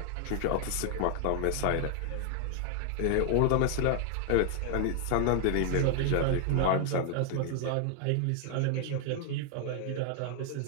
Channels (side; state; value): both; different; correlation 0.00